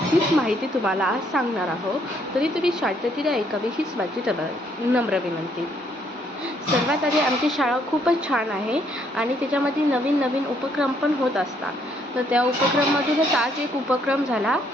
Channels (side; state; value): both; normal; correlation 0.69